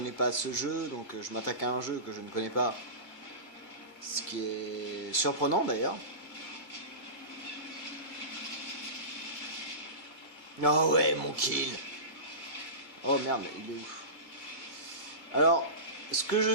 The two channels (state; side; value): late; right; 2.3 ms